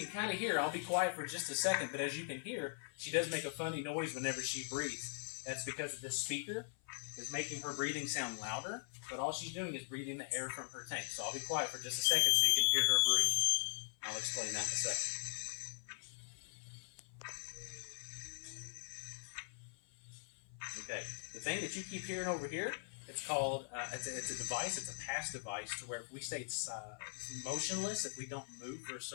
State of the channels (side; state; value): right; silent; 50 dB below the other